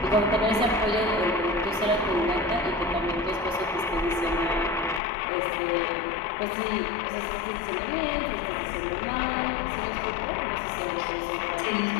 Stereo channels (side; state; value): right; drops out; at 5.0 s